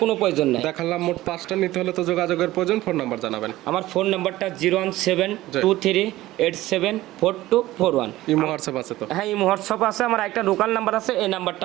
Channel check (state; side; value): quieter; left; 16.6 dB